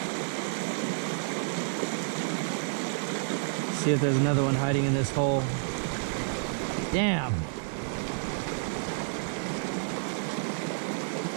See if there's another one hiding in this hole. Damn.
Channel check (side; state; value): left; silent; digital silence